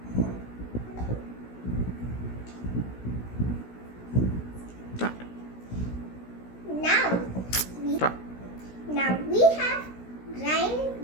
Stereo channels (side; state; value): right; late; 16 ms